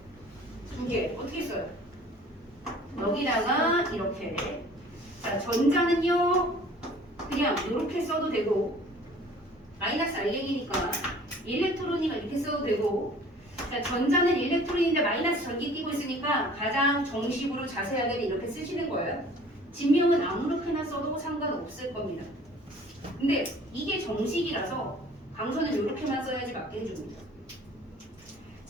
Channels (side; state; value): both; normal; correlation 0.50